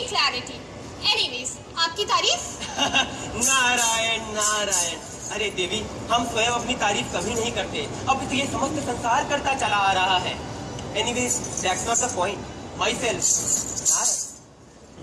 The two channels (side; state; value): both; identical; correlation 1.00